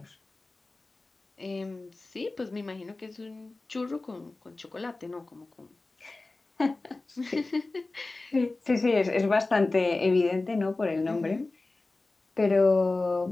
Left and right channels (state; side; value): quieter; right; 3.3 dB